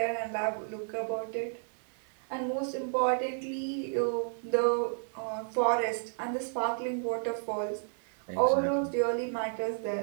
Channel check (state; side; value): silent; left; 56 dB below the other